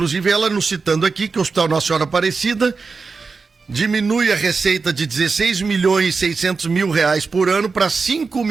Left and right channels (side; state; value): left; quieter; 4.6 dB